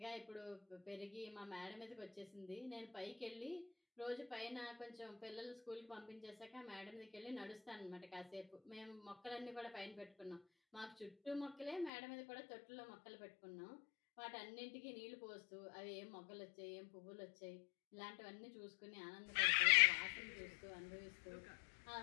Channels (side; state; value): right; drops out; at 11.9 s